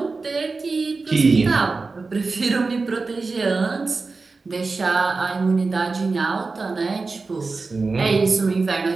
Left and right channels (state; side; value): quieter; left; 4.0 dB